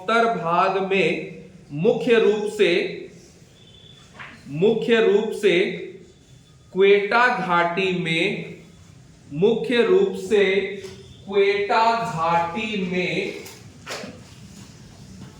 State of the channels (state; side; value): identical; both; correlation 1.00